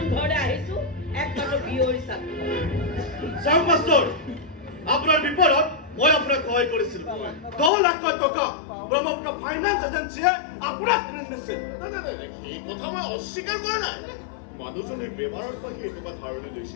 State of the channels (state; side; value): drops out; right; at 7.7 s